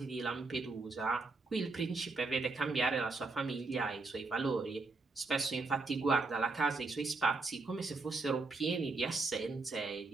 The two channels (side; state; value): left; quieter; 3.6 dB